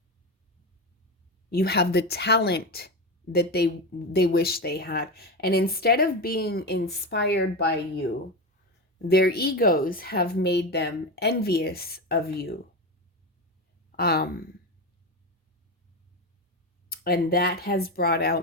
You have the talent that they wish they had. And instead of being inspired by you, their egos have made them envious of you. Um and that has brought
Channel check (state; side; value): normal; both; correlation 0.18